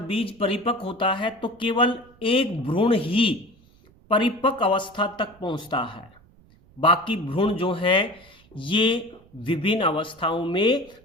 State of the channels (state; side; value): noise; right; rumble, 28 dB below the sound